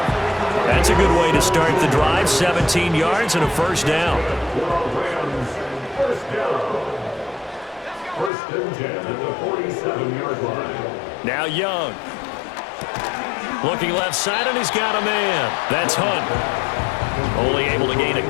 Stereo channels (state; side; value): drops out; right; at 8.3 s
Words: That's a good way to start the drive. 17 yards and a first down. First and 10 at the 47-yard line. Now Young. Looking left side, and he's got a man. That's Hunt. Only able to gain a